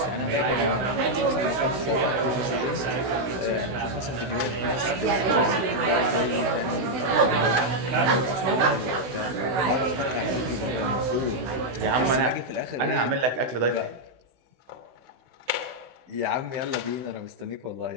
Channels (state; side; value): late; left; 16 ms